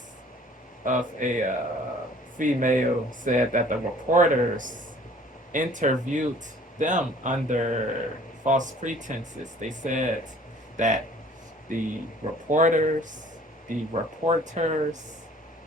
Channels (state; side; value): normal; both; correlation 0.52